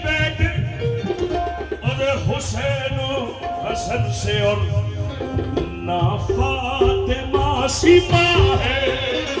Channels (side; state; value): both; identical; correlation 1.00